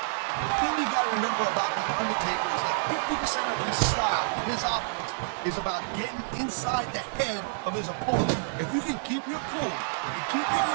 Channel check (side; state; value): left; silent; digital silence